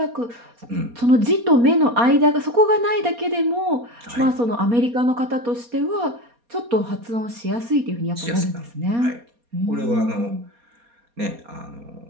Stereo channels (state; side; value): late; left; 4.2 ms